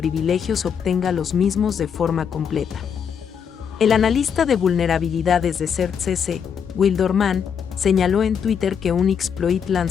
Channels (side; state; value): right; quieter; 7.3 dB